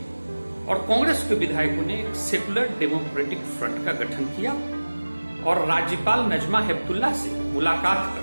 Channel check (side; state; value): both; inverted; correlation -1.00